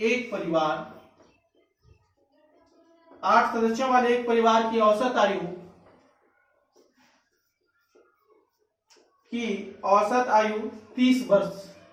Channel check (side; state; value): both; identical; correlation 1.00